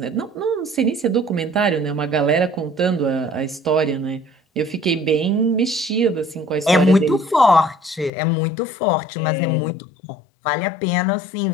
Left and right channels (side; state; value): right; drops out; at 8.1 s